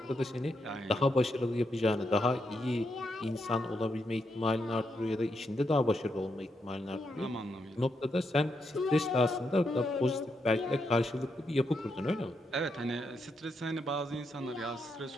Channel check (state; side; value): normal; both; correlation 0.81